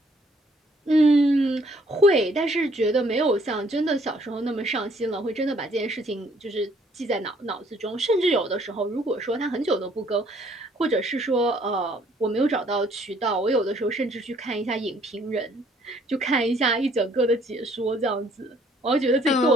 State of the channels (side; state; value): both; normal; correlation 0.63